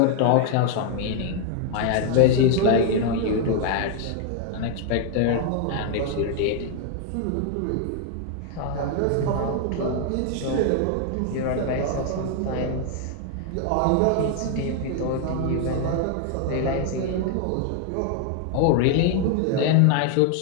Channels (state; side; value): different; both; correlation 0.00